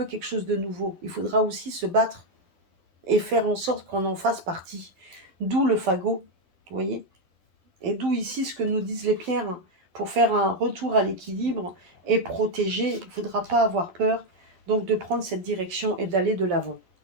quelque chose de nouveau, il faudra aussi se battre et faire en sorte qu'on en fasse partie. D'où le fagot, vous voyez. Et d'où ici ce que nous disent les pierres. Pour faire un retour à l'équilibre et protéger, il ne faudra pas avoir peur donc de prendre cette direction et d'aller de l'avant.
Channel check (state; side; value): late; left; 11 ms